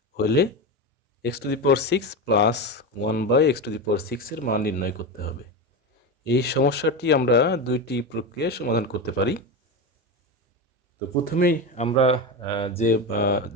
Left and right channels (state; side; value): normal; both; correlation 0.18